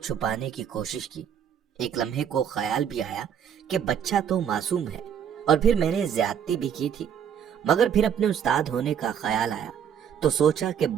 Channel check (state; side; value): quieter; left; 8.4 dB